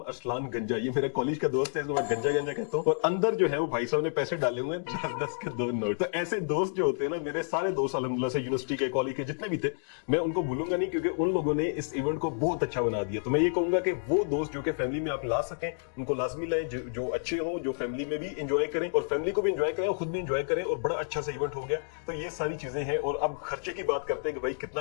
अरसलान गंजा। ये मेरे कॉलेज का दोस्त है, इसको मैं गंजा गंजा कहता हूँ। और अंदर जो है वो भाई साहब ने पैसे डाले हुए हैं 10-10 के 2 नोट। तो ऐसे दोस्त जो होते हैं ना, मेरे सारे दोस्त अल्हम्दुलिल्लाह से यूनिवर्सिटी के, कॉलेज के जितने भी थे, मैं उनको भूलूंगा नहीं, क्योंकि उन लोगों ने इस इवेंट को बहुत अच्छा बना दिया। तो मैं ये कहूंगा कि वो दोस्त जो कि फैमिली में आप ला सकें, उनको लाजमी लाएं, जो अच्छे हो, जो फैमिली में भी इंजॉय करें और फैमिली को भी इंजॉय करें और खुद भी इंजॉय करें। और बड़ा अच्छा सा इवेंट हो गया। तो ये सारी चीजें हैं। और अब खर्चे की बात करते हैं कि भाई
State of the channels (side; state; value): right; silent; digital silence